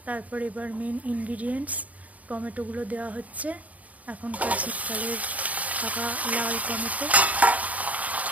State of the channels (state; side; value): late; left; 0.072 ms